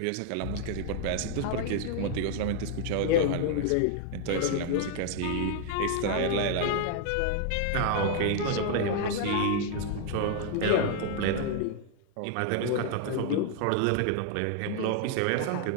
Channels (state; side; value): different; both; correlation 0.00